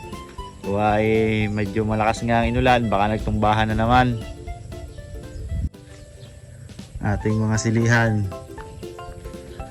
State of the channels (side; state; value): both; identical; correlation 1.00